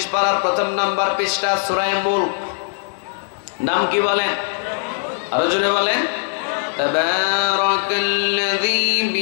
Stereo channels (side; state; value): right; silent; 66 dB below the other